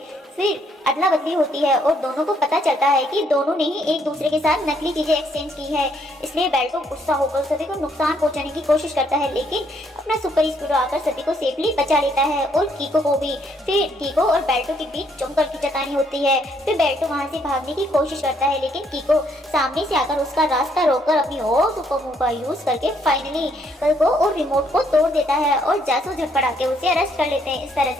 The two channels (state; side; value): normal; both; correlation 0.70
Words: फिर अदला बदली होती है और दोनों को पता चलता है कि दोनों ने ही एक दूसरे के साथ नकली चीजें एक्सचेंज की है, इसलिए बेल्टो गुस्सा होकर सभी को नुकसान पहुंचाने की कोशिश करता है लेकिन अपना सुपर स्पीडो आकर सभी को सेफली बचा लेता है और कीको को भी। फिर कीको और बेल्टो के बीच जमकर खींचातानी होती है। फिर बेल्टो वहां से भागने की कोशिश करता है लेकिन कीको सामने से आकर उसका रास्ता रोककर अपनी और सुपर मूव का यूज करके फाइनली कल को और रिमोट को तोड़ देता है और जासूस झटपटा के उसे अरेस्ट कर लेते हैं। इस तरह